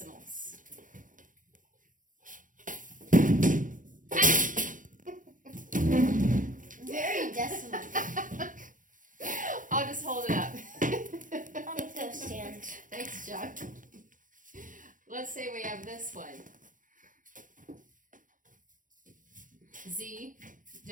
Very decimal. I'll just hold it up. I'll get those stands. Thanks, John. Let's say we have this one. Z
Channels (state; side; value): late; left; 0.38 ms